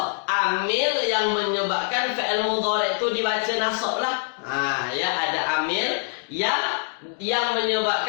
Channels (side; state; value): right; silent; digital silence